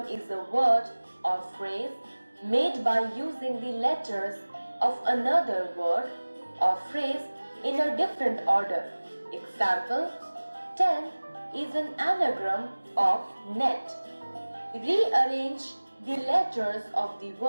is a word or phrase made by using the letters of another word or phrase in a different order. Example: 10 is an anagram of net. Rearrange the letters of the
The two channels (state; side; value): inverted; both; correlation -1.00